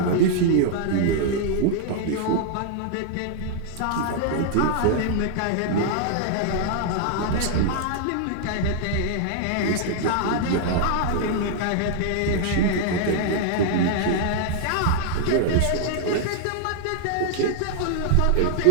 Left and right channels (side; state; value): both; different; correlation -0.01